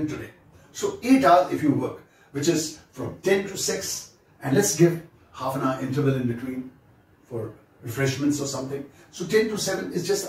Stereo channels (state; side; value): identical; both; correlation 1.00